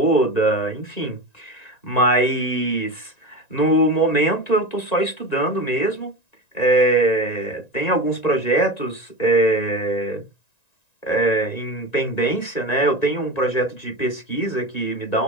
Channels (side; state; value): right; late; 1.9 ms